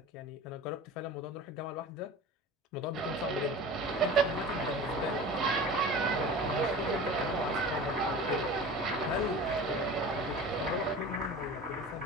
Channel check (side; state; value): both; normal; correlation 0.37